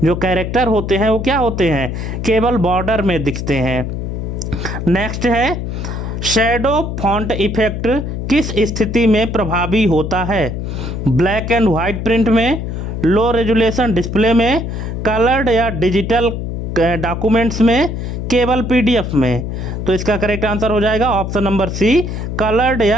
जो कैरेक्टर होते हैं, वो क्या होते हैं? केवल बॉर्डर में दिखते हैं। नेक्स्ट है, शैडो फॉन्ट इफेक्ट किस स्थिति में प्रभावी होता है? ब्लैक एंड वाइट प्रिंट में, लो रेजुलेशन डिस्प्ले में, कलर्ड या डिजिटल डॉक्यूमेंट्स में, केवल पीडीएफ में। तो इसका करेक्ट आंसर हो जाएगा ऑप्शन नंबर सी, कलर्ड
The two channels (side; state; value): left; noise; hum, 4 dB below the sound